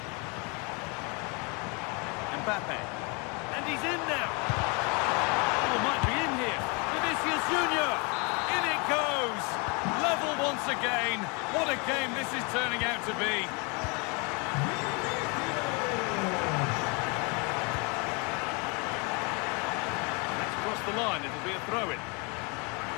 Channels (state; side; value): quieter; right; 31.5 dB